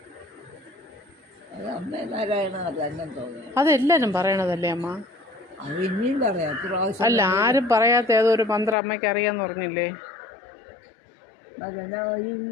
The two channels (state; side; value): drops out; right; at 8.8 s